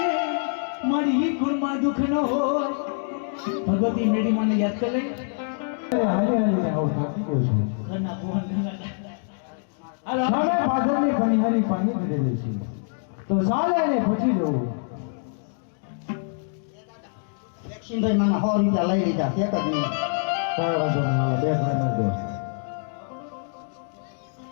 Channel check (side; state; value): right; silent; digital silence